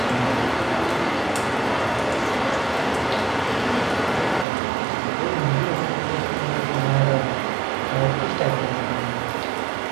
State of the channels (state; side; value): drops out; left; at 4.5 s